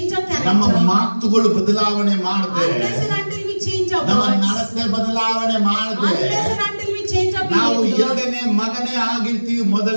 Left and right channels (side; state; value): both; inverted; correlation -1.00